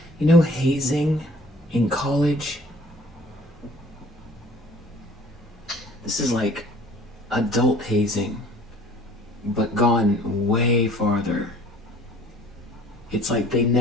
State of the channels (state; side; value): normal; both; correlation 0.52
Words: hazing in college. This is like adult hazing, but gone way farther. It's like they